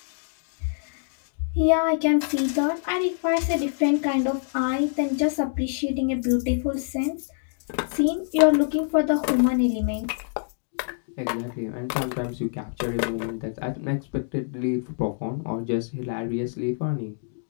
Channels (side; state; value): right; silent; digital silence